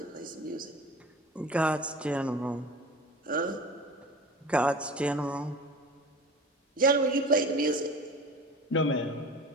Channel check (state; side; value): normal; both; correlation 0.37